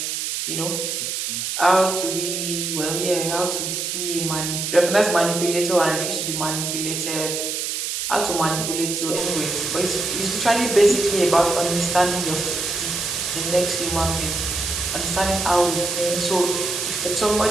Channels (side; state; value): right; noise; hiss, 2 dB below the sound